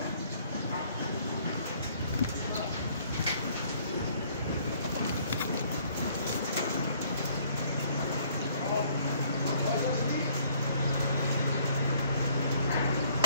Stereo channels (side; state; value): both; inverted; correlation -0.61